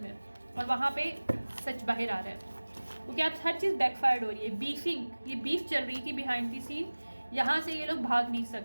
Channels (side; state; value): both; inverted; correlation -1.00